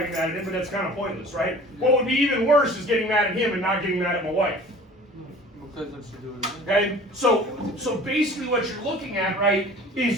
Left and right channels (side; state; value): both; normal; correlation 0.45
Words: be mad at him, but that's kind of pointless, right? What would be even worse is getting mad at him and not getting mad at my wife. Because what you do is Okay, so basically what you're looking at, right,